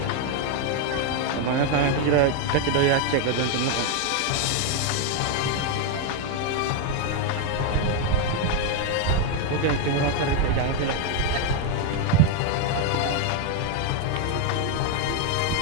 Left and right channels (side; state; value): both; different; correlation 0.01